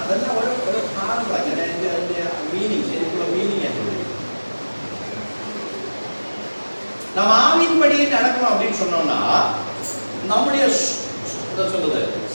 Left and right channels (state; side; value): inverted; both; correlation -1.00